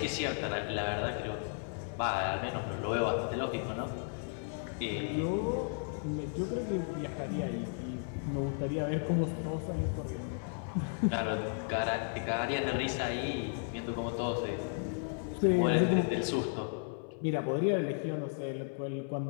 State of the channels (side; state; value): right; silent; 55 dB below the other